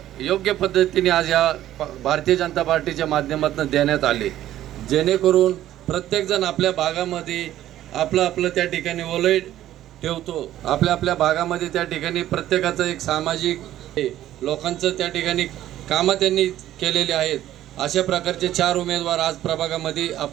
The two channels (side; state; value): left; quieter; 13.0 dB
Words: योग्य पद्धतीने आज या भारतीय जनता पार्टीच्या माध्यमातून देण्यात आले, जेणेकरून प्रत्येकजण आपल्या भागामध्ये आपलं त्या ठिकाणी ओलई ठेवतो। आपल्या भागामध्ये त्या ठिकाणी प्रत्येकाचं एक सामाजिक लोकांचं त्या ठिकाणी कामं त्यांनी केलेली आहेत। अशा प्रकारचे 4 उमेदवार आज प्रभागामध्ये